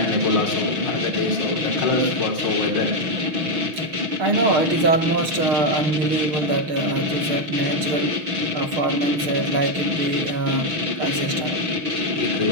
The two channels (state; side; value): late; left; 6.6 ms